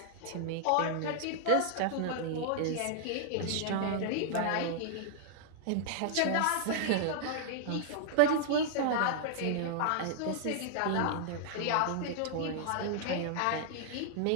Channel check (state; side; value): different; both; correlation -0.01